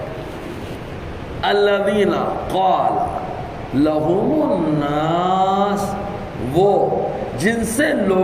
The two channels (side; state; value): both; identical; correlation 1.00